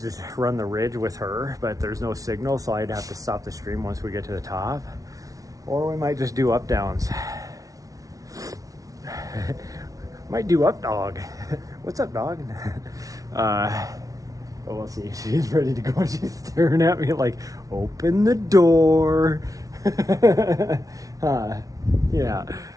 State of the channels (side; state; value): left; late; 0.17 ms